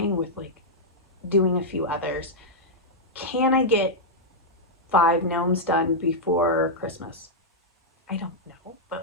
with like doing a few others. Can I get 5 gnomes done before Christmas? I don't know,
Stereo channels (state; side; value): normal; both; correlation -0.06